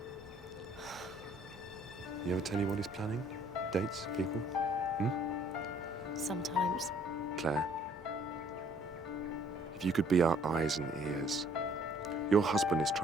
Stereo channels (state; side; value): normal; both; correlation 0.61